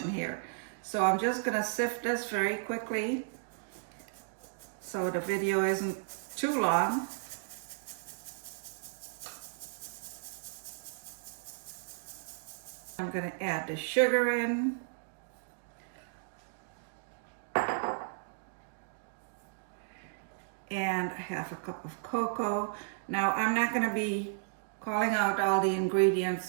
in here. So I'm just gonna sift this very quickly so the video isn't too long. I'm gonna add the sugar in. And I have a cup of cocoa. Now I'm not gonna be calling out all the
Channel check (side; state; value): left; silent; digital silence